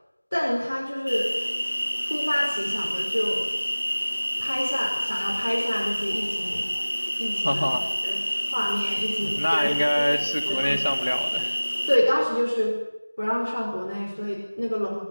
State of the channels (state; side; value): inverted; both; correlation -1.00